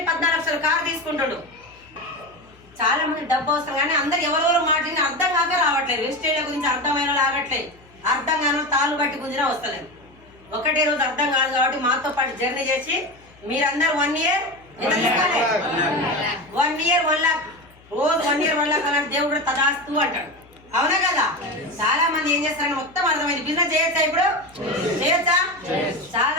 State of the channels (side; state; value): left; noise; hum, 27 dB below the sound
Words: 14 లక్షల కారు తీసుకుంటాడు. చాలా మంది డబ్బు అవసరం, కానీ అందరు ఎవరెవరు మాట్లాడి అర్థం కాక రావట్లేదు. వెస్టేజ్ల గురించి అర్థమైన లాగట్లేదు. అర్థం కాని తాళ్ళు బట్టి గుంజినా వస్తలేదు. ఒకటే రోజు అర్థం కాదు కాబట్టి మాతో పాటు జర్నీ చేసి మీరందరూ 1 ఇయర్ 1 ఇయర్ 1 lakh, రోజు 1 ఇయర్ 1 lakh అలాంటి దేవుడు తదాస్తూ అంటాడు, అవునా కదా? చాలా మంది ఏం చేస్తారని మొత్తం అర్థమైంది. బిజినెస్ చేయొచ్చా? ఇప్పుడు చేయొచ్చా?